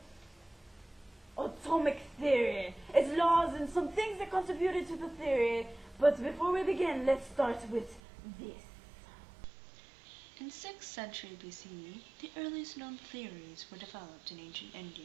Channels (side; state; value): left; drops out; at 8.0 s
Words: atomic theory, its laws and some things that contributed to the theory. But before we begin, let's start with this. In 6th century BCE, the earliest known theories were developed in ancient